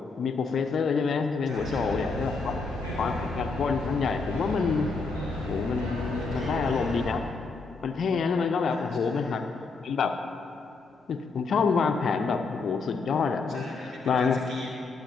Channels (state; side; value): quieter; right; 4.3 dB